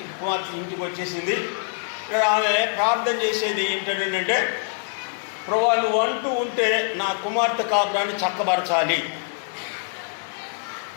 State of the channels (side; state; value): right; silent; 62 dB below the other